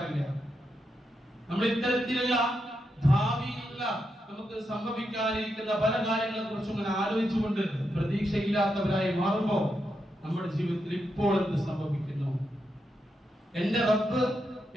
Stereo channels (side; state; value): both; normal; correlation 0.84